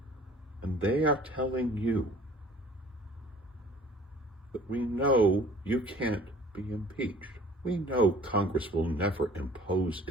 And they are telling you that we know you can't be impeached. We know Congress will never impose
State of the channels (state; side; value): normal; both; correlation 0.50